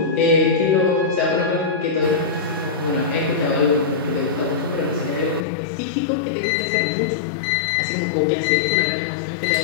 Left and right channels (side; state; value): right; drops out; at 5.5 s